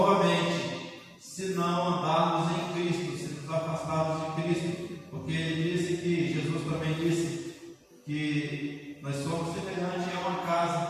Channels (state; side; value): identical; both; correlation 1.00